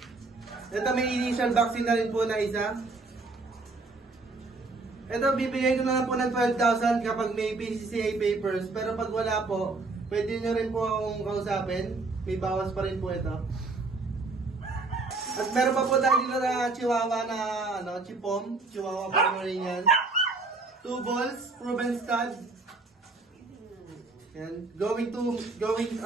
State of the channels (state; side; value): quieter; left; 3.6 dB